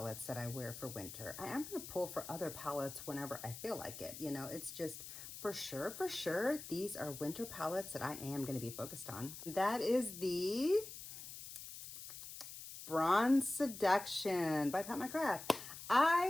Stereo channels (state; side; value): noise; left; hiss, 11 dB below the sound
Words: that I wear for winter. I am going to pull for other palettes whenever I feel like it. You know, it's just for sure, these are winter palettes that I am going to be focused on. That is the Bronze Seduction by Pat McGrath.